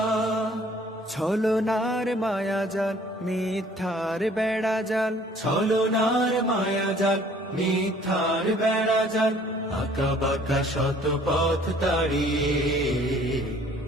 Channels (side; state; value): both; normal; correlation 0.56